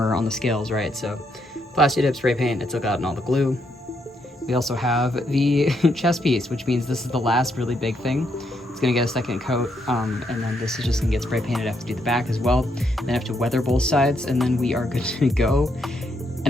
on the scales, right? So plasti dip, spray paint, it took out all the glue. We also have the chest piece, which means this is the last really big thing. It's gonna get a second coat, and then this is just gonna get spray painted. I have to do the back as well. Then I have to weather both sides, and then we are good to go. And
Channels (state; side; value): normal; both; correlation 0.76